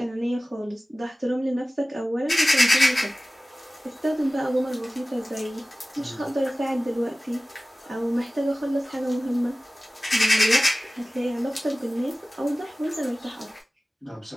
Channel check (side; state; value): both; normal; correlation 0.97